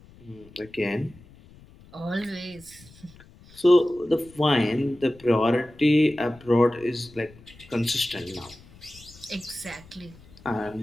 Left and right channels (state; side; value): noise; left; rumble, 23 dB below the sound